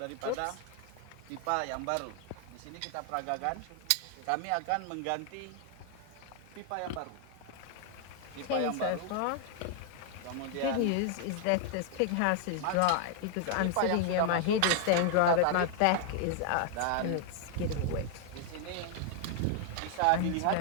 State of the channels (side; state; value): both; different; correlation 0.00